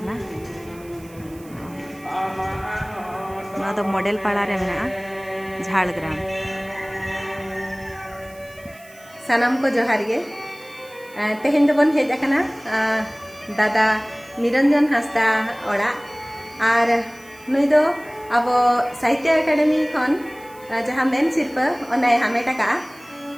नोआ दो मॉडल पाड़ा रे मेना झाड़ग्राम सानाम को जोहार गे तेहेन दो बन हेज आकना दादा निरंजन हांसदा ओड़ा और नुई दो अब साहित्य अकादमी खन जहाँ मेन सिरपा ओना हामेट का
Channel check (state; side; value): noise; right; hiss, 24 dB below the sound